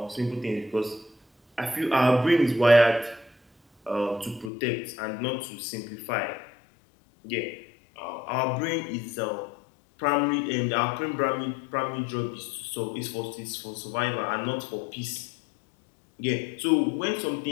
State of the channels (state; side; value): drops out; right; at 4.5 s